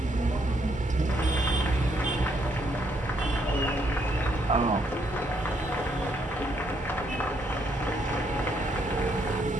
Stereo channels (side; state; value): both; normal; correlation 0.73